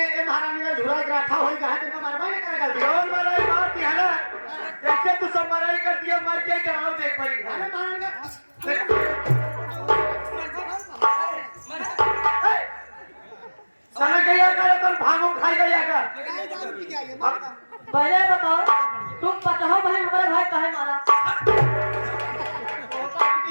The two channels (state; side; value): inverted; both; correlation -1.00